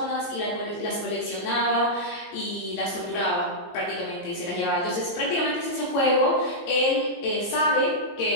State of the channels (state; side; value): late; right; 15 ms